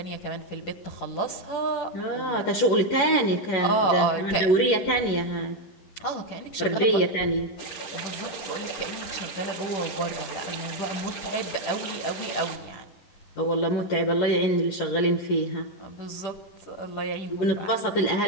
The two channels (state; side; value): late; right; 11 ms